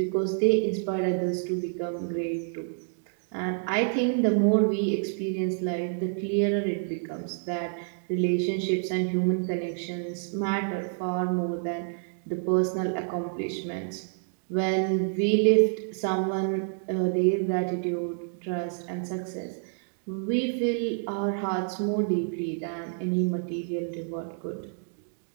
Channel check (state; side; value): silent; left; digital silence